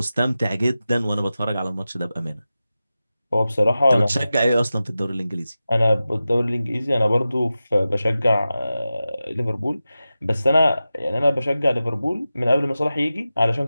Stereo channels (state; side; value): inverted; both; correlation -0.94